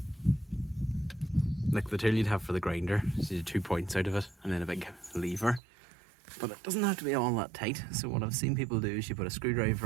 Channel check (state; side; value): drops out; left; at 5.6 s